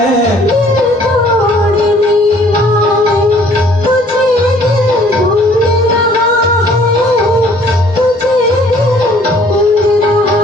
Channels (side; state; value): both; normal; correlation 0.58